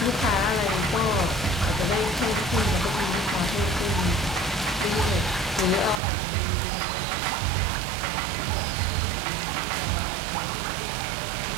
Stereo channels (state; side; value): drops out; left; at 6.0 s